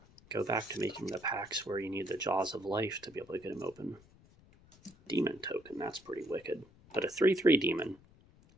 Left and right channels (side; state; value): left; noise; rumble, 26 dB below the sound